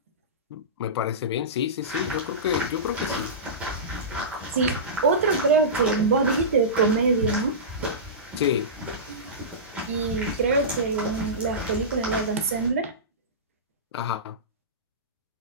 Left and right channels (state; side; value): normal; both; correlation -0.20